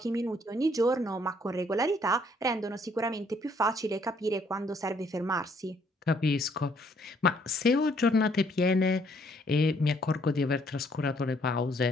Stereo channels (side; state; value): both; normal; correlation 0.66